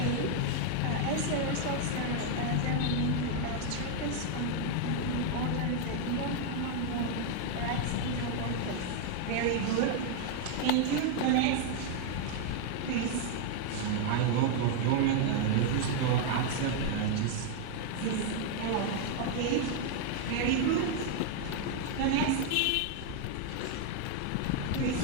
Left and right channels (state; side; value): different; both; correlation 0.00